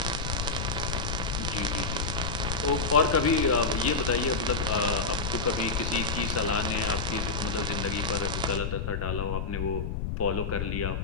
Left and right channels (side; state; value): left; noise; rumble, 2 dB below the sound